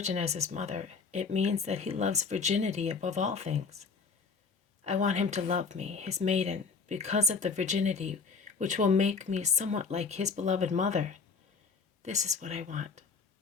as his mother, it means that he loves virginity above all things. I want him to love me, his maiden, because of the virginity which will make me somewhat like his beloved mother. This is what I want.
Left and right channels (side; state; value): right; quieter; 5.0 dB